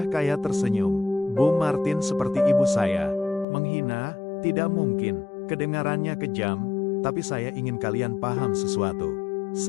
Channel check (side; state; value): right; drops out; at 3.5 s